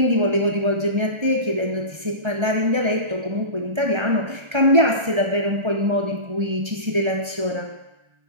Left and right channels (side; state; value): left; late; 1.3 ms